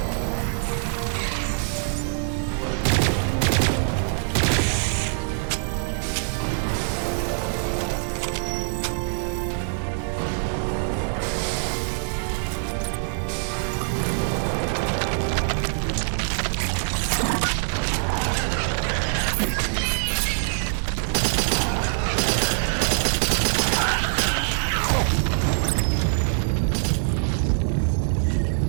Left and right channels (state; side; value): silent; left; digital silence